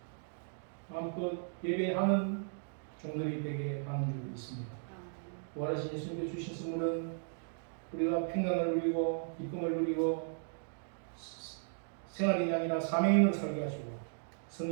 마음껏 예배하는 종들이 되게 하는 줄 믿습니다. 부활하신 예수님께 주신 선물은 우리가 평강을 누리고 기쁨을 누리고 생활인이 아니라 사명인으로 살게 하시고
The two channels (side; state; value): left; silent; digital silence